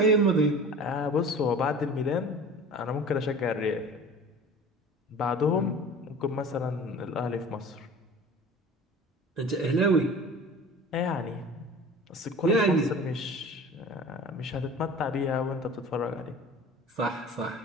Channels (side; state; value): both; normal; correlation 0.40